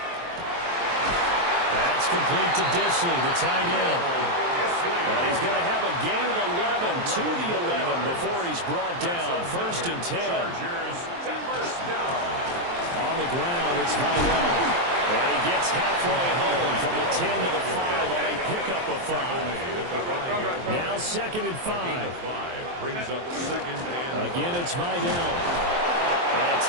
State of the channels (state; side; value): late; left; 23 ms